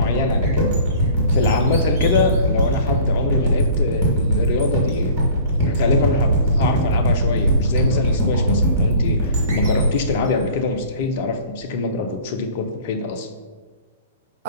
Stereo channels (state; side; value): inverted; both; correlation -0.46